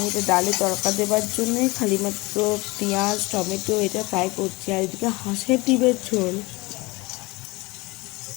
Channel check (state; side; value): quieter; right; 23.2 dB